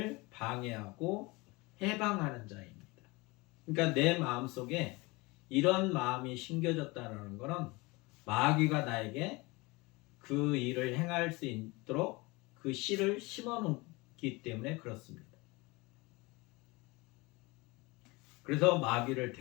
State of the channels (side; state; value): right; quieter; 24.2 dB